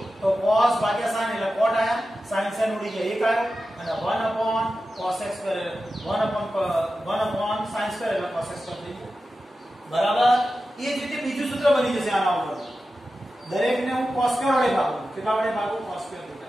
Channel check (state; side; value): normal; both; correlation 0.93